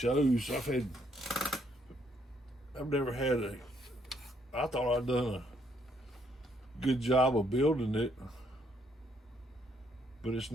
I've never had I thought I'd done a good job of building it, but it's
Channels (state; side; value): normal; both; correlation 0.70